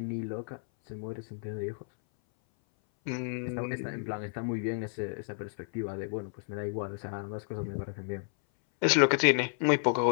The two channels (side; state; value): right; silent; 57 dB below the other